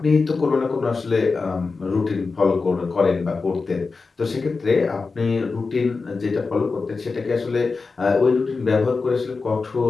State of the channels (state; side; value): quieter; right; 4.3 dB